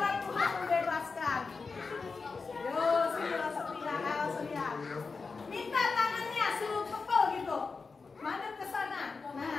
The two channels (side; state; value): right; quieter; 4.5 dB